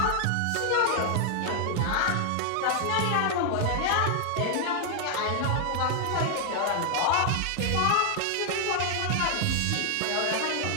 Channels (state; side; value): different; both; correlation 0.00